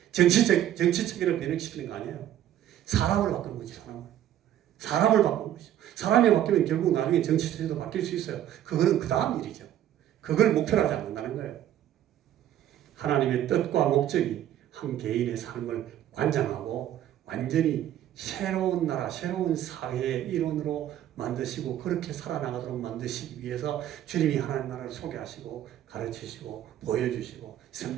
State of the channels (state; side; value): quieter; left; 11.7 dB